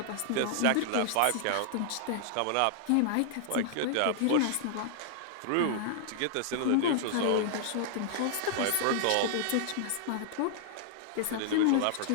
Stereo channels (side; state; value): both; different; correlation -0.01